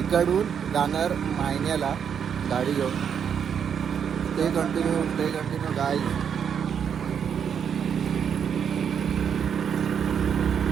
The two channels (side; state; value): left; quieter; 7.7 dB